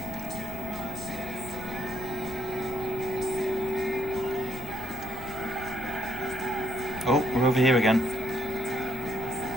Oh, we're over here again.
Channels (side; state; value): left; noise; rumble, 15 dB below the sound